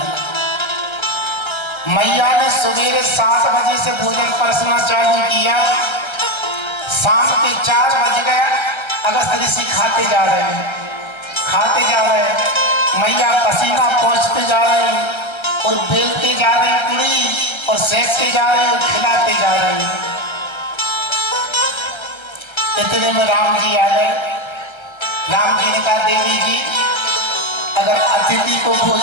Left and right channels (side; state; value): right; late; 1.3 ms